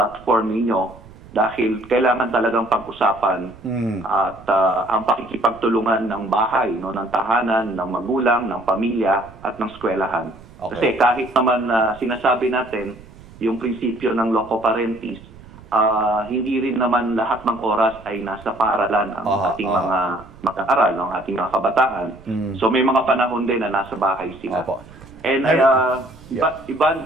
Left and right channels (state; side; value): noise; right; rumble, 21 dB below the sound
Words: ninyo dahil kailangan talagang pag-usapan at ang pakikipagtulungan ng bahay, no, ng tahanan, ng magulang, ng pamilya at ng eskwelahan. Kasi kahit naman sinasabi natin yung prinsipyo ng loco parentis, hindi rin naman lahat ng oras ay nasa paaralan ang ating mga mag-aaral, ang ating mga kabataan. So may mga panahon din na nasa bahay sila. And